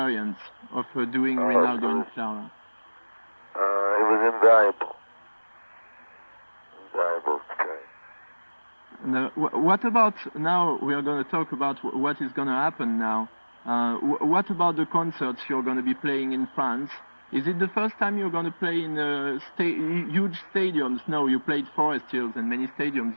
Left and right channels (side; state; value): both; inverted; correlation -1.00